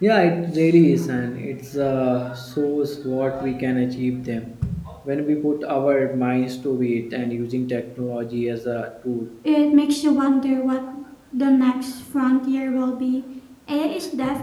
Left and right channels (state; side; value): identical; both; correlation 1.00